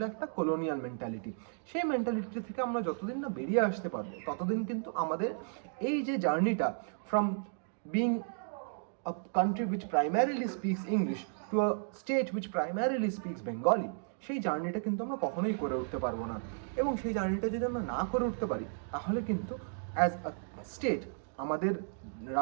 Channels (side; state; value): left; silent; digital silence